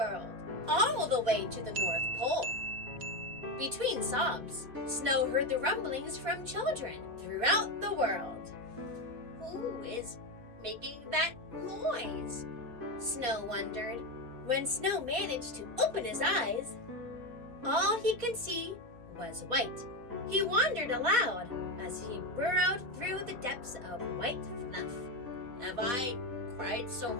all the way to the North Pole. Between sobs, Snow heard the rumblings from children throughout the world. Who is making that noise? Snow wondered. When Snow managed to open his eyes, all he could see was white. He wondered aloud as he burrowed through the depths of white fluff. Have I cried so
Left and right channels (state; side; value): late; left; 4.1 ms